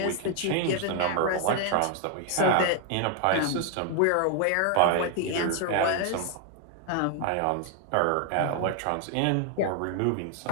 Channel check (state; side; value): different; both; correlation 0.00